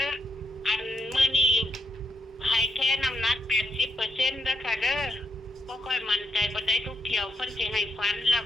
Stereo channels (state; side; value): normal; both; correlation 0.79